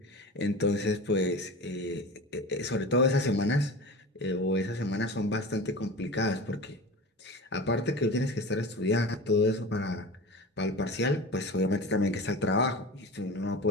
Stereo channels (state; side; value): normal; both; correlation 0.32